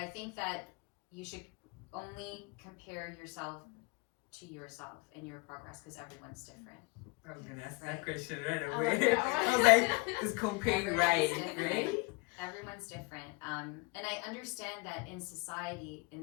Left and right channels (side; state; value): right; quieter; 27.3 dB